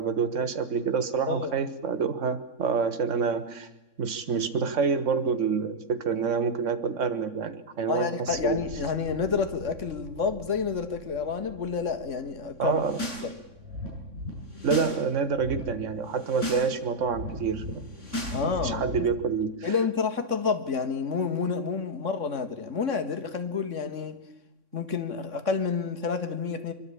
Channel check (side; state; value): left; late; 3.6 ms